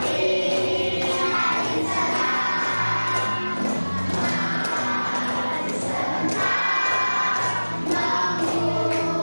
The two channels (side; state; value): both; inverted; correlation -1.00